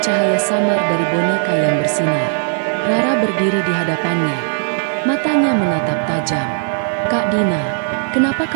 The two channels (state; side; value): silent; left; digital silence